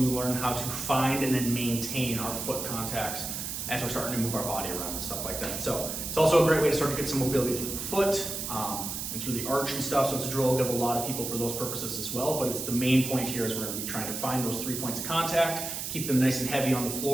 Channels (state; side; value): noise; right; hiss, 5 dB below the sound